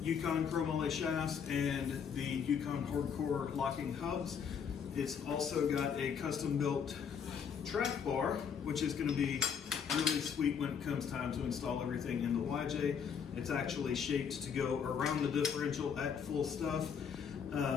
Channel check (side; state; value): right; quieter; 7.1 dB